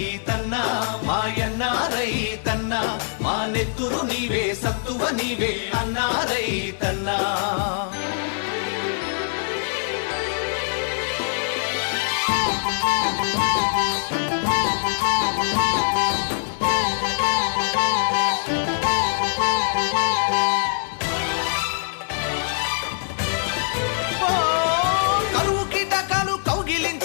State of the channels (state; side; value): silent; right; digital silence